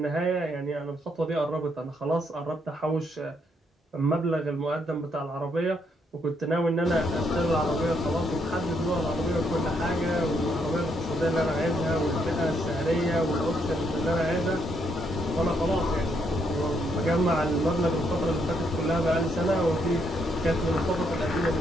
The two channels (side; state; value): both; normal; correlation 0.74